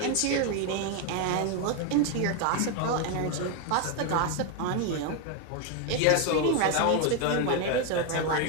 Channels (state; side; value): different; both; correlation 0.01